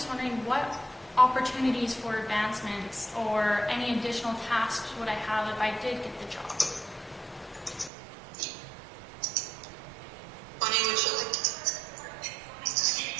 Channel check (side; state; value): left; drops out; at 7.9 s